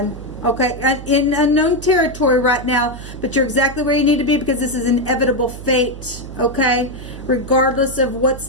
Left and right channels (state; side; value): noise; right; hum, 13 dB below the sound